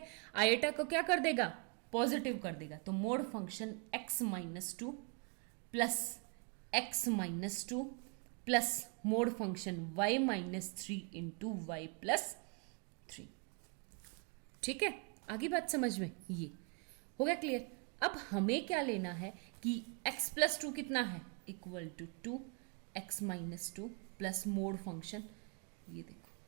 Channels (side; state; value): left; quieter; 33.6 dB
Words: आयोटा को क्या कर देगा, पॉजिटिव कर देगा। तो mod function x minus 2 plus x minus 2 plus mod function y minus 3 into y plus 3। ठीक है, आगे बात समझ में? ये हो गया क्लियर। अब हमें क्या लेना है कि x प्लस 2 कितना है, equal to 2x minus 2 plus mod function, ये देखो